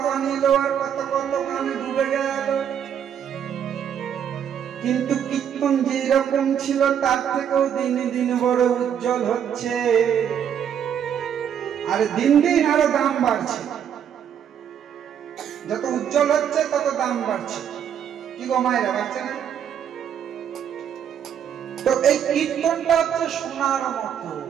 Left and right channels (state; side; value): quieter; left; 8.8 dB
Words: গান এলো আর কত কত গানে ডুবে গেল, কিন্তু কীর্তন যেরকম ছিল তার থেকেও দিনে দিন বড় উজ্জ্বল হচ্ছে, আর দিন দিন আরো দাম বাড়ছে। যত উজ্জ্বল হচ্ছে তত দাম বাড়ছে। কি গো মায়েরা, বাড়ছে না? তো এই কীর্তনটা হচ্ছে সোনার মতো,